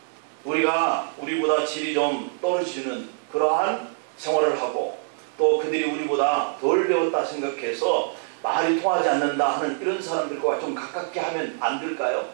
우리가 우리보다 질이 좀 떨어지는 그러한 생활을 하고 또 그들이 우리보다 덜 배웠다 생각해서 말이 통하지 않는다 하는 이런 사람들과 좀 가깝게 하면 안 될까요?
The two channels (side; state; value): left; silent; 62 dB below the other